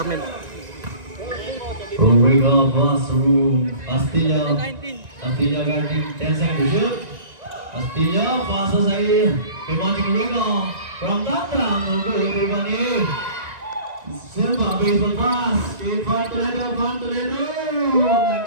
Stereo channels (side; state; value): left; late; 1.9 ms